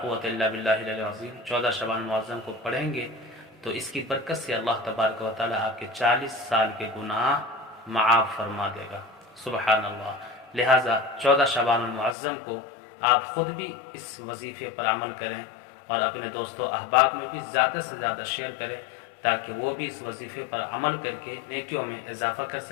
قوت الا باللہ العلی العظیم 14 شعبان المعظم کو پڑھیں گے تو اس کی برکت سے اللہ تبارک و تعالی آپ کے 40 سال کے گناہ معاف فرما دے گا۔ سبحان اللہ۔ لہٰذا 14 شعبان المعظم کو آپ خود بھی اس وظیفے پر عمل کریں اور اپنے دوستوں احباب میں بھی زیادہ سے زیادہ شیئر کریں تاکہ وہ بھی اس وظیفے پر عمل کر کے نیکیوں میں اضافہ کر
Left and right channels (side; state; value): right; drops out; at 12.2 s